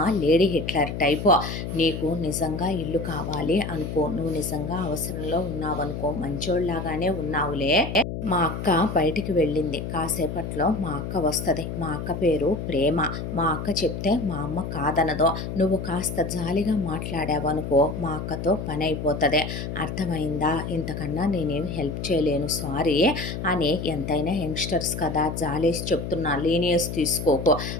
లేడీ హిట్లర్ టైపు. నీకు నిజంగా ఇల్లు కావాలి అనుకో, నువ్వు నిజంగా అవసరంలో ఉన్నావనుకో, మంచోళ్ళలాగానే ఉన్నావులే. మా అక్క బయటికి వెళ్ళింది, కాసేపట్లో మా అక్క వస్తుంది. మా అక్క పేరు ప్రేమ. మా అక్క చెప్తే మా అమ్మ కాదనదో. నువ్వు కాస్త జాలిగా మాట్లాడావనుకో, మా అక్కతో పని అయిపోతుంది. అర్థమైందా? ఇంతకన్నా నేనేమి హెల్ప్ చేయలేను, సారీ అని. ఎంతైనా యంగ్స్టర్స్ కదా, జాలేసి చెప్తున్నా, లీనియస్ తీసుకోకు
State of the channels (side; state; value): left; noise; hum, 5 dB below the sound